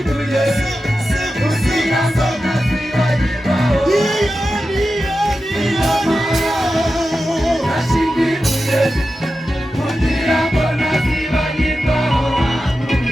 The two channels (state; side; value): normal; both; correlation 0.92